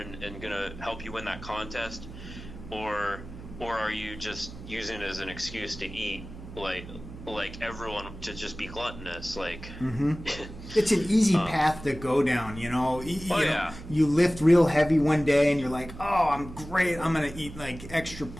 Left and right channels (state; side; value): noise; right; hum, 14 dB below the sound